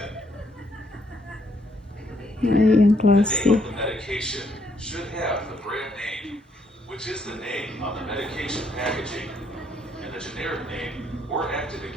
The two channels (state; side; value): normal; both; correlation 0.71